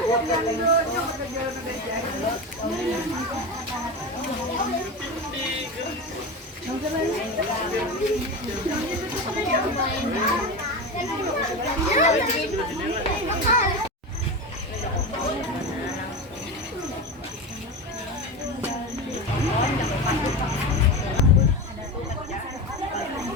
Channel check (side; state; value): both; normal; correlation 0.23